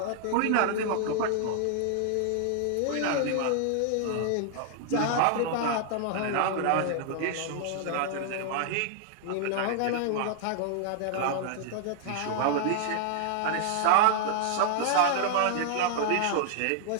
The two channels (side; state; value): both; different; correlation -0.01